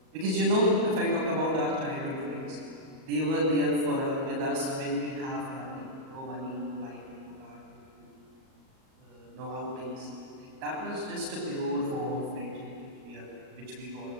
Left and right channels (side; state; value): left; late; 38 ms